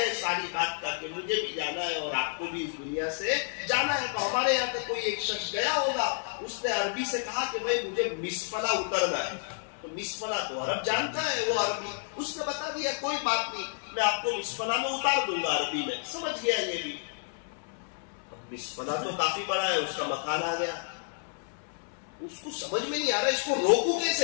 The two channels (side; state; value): right; silent; 58 dB below the other